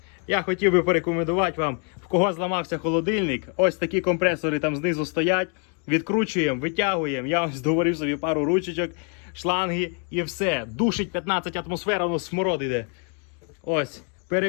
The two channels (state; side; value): quieter; right; 39.4 dB